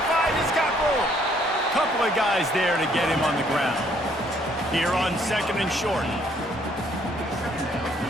he's got room. Couple of guys there to get him on the ground. Here on 2nd and short.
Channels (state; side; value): normal; both; correlation 0.65